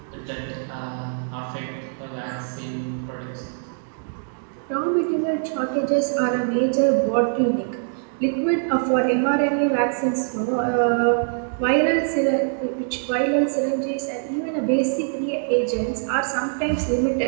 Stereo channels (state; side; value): silent; left; digital silence